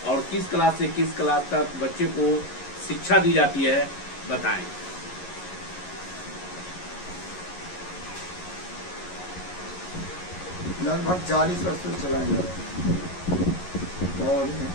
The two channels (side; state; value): right; late; 11 ms